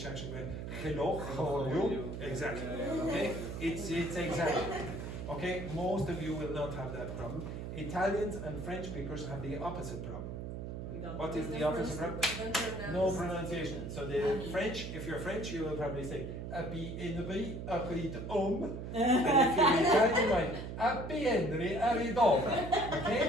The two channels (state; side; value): noise; right; hum, 7 dB below the sound